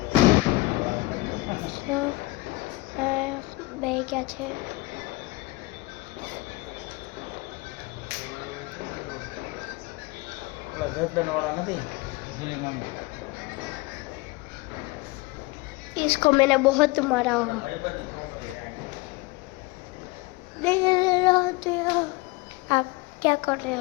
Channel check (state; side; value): quieter; right; 22.4 dB